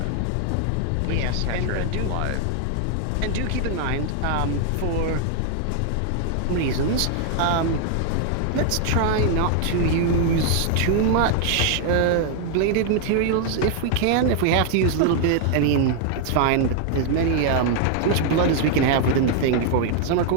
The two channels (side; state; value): both; different; correlation 0.00